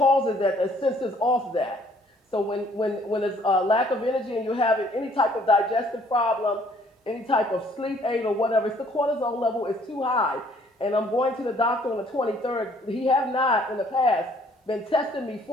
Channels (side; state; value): both; normal; correlation 0.61